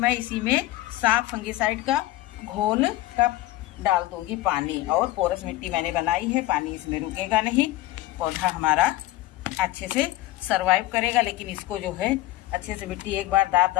इसी में साफ फंगिसाइड का घोल का डाल दूंगी पानी। और पोरस मिट्टी मैंने बनाई है, पानी इसमें रुकेगा नहीं, पौधा हमारा अच्छे से सरवाइव करेगा। लेकिन इसको जो है अच्छे से मिट्टी एक बार दाब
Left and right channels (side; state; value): right; quieter; 17.0 dB